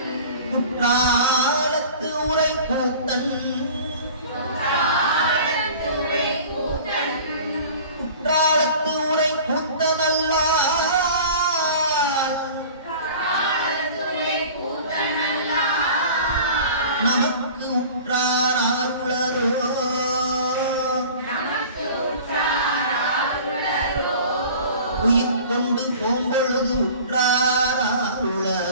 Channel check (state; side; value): inverted; both; correlation -0.42